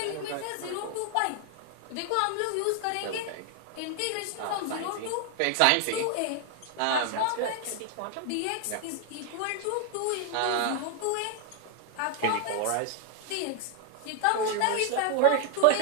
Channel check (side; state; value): both; different; correlation 0.00